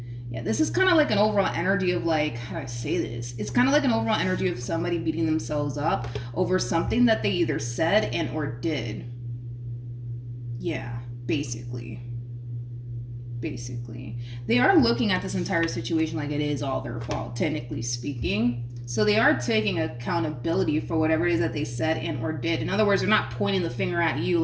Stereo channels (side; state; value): both; identical; correlation 1.00